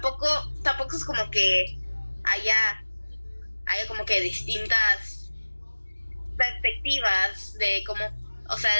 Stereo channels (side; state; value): both; inverted; correlation -1.00